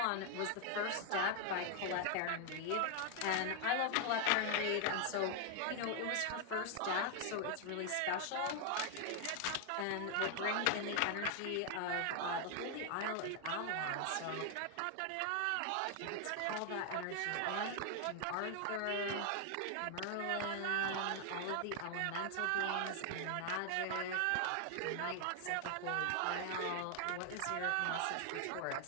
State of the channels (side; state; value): both; different; correlation 0.00